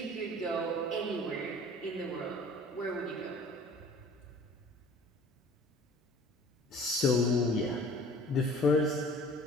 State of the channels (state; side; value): normal; both; correlation 0.48